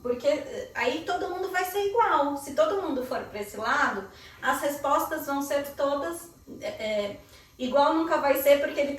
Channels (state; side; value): identical; both; correlation 1.00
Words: porque aí todo mundo vai ser igual. Se todo mundo for para esse lado, as respostas vão ser todas igual nunca vai ser, porque ele